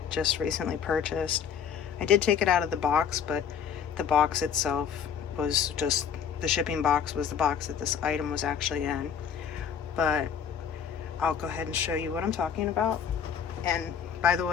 just recently purchased. I did take it out of the box, but the box itself was just, the shipping box was the box that this item was actually in. But I'll go ahead and show you what I'm talking about. And by the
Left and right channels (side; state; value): right; quieter; 7.7 dB